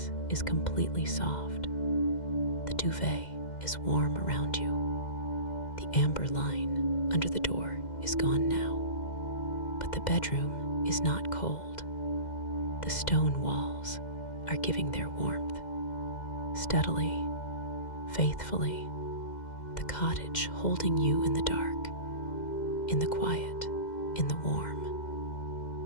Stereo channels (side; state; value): right; late; 2.1 ms